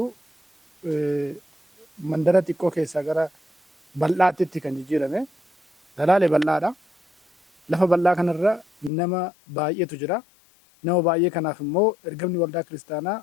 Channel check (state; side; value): drops out; right; at 8.9 s